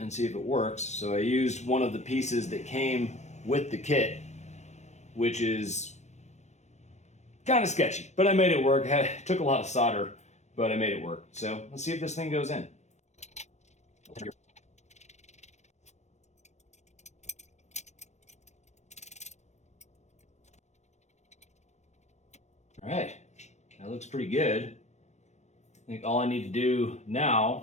see if it works. So I used one of the pieces that came with the kit, which is kind of sketchy, but I made it work. It took a lot of solder, but I made it work. So let's see if this thing goes in. All right, that looks pretty good. I think all I need to do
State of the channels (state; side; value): late; right; 0.33 ms